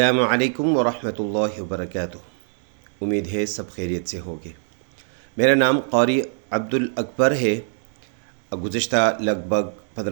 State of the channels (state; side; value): silent; left; digital silence